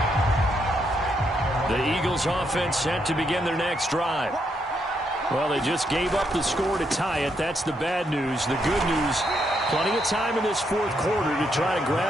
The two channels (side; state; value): both; normal; correlation 0.77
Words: The Eagles offense set to begin their next drive. Well, they just gave up the score to tie it. That's the bad news. The good news, plenty of time in this 4th quarter to try to